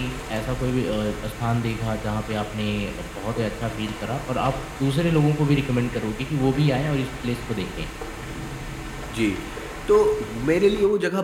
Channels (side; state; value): both; identical; correlation 1.00